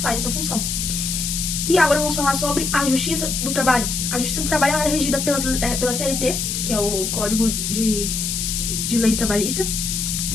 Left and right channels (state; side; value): noise; left; hiss, 1 dB below the sound